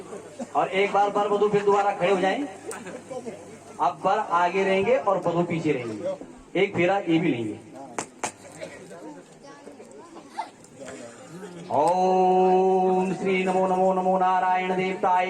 और एक बार वर वधू फिर दोबारा खड़े हो जाएं। अब वर आगे रहेंगे और वधू पीछे रहेंगे। एक फेरा ये भी लेंगे। ओम श्री नमो नमो नमो नारायण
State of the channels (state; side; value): identical; both; correlation 1.00